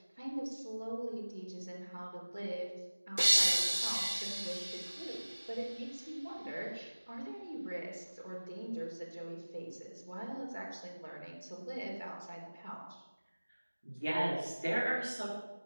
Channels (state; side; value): inverted; both; correlation -1.00